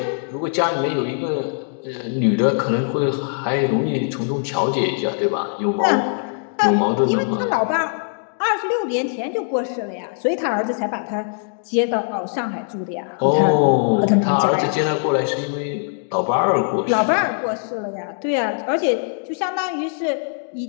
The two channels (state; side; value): silent; right; digital silence